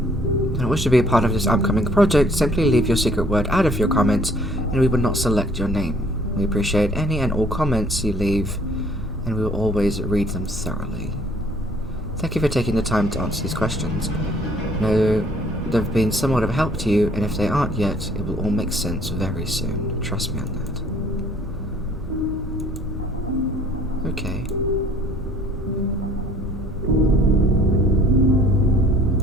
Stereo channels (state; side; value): normal; both; correlation 0.59